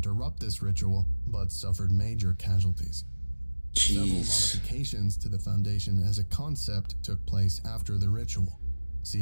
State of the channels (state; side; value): inverted; both; correlation -1.00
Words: this ritual, but suffered major casualties. Several Jeez. modifications to the Foundation as a concept took place after the ritual.